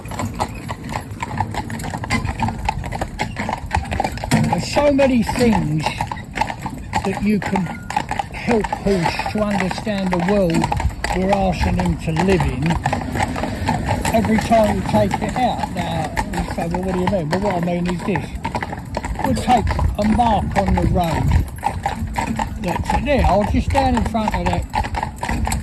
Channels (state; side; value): identical; both; correlation 1.00